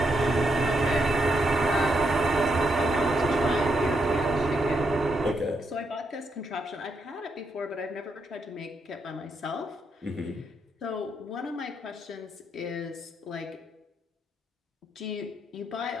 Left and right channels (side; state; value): both; normal; correlation 0.80